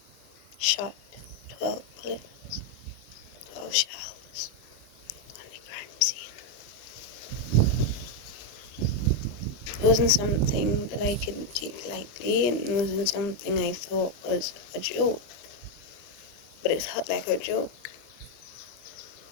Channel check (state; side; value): late; right; 25 ms